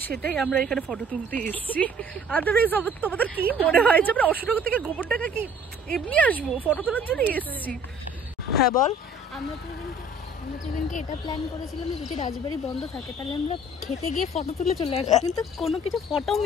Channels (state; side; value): normal; both; correlation 0.53